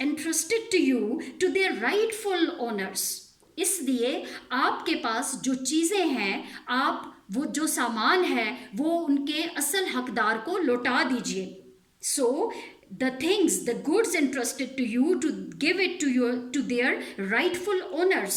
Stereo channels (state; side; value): identical; both; correlation 1.00